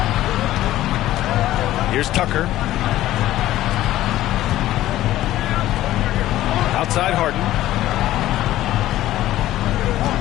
Here's Tucker. Outside Harden.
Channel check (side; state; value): right; quieter; 14.5 dB